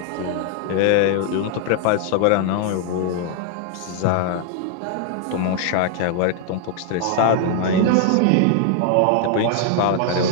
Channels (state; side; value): different; both; correlation 0.00